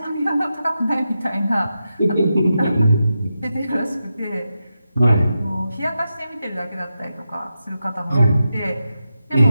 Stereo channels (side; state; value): both; inverted; correlation -0.89